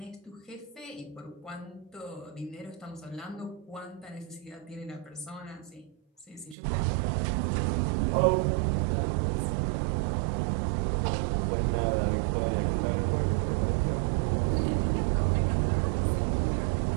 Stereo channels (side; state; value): left; drops out; at 6.6 s